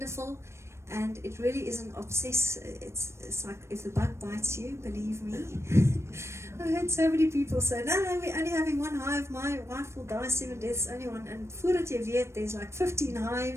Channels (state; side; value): late; left; 0.13 ms